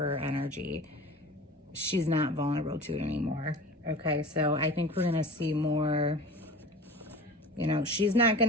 energy. She's not vulnerable to it anymore. Okay, so I think we're going to see more, you know, she's not going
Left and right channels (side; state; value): both; normal; correlation 0.37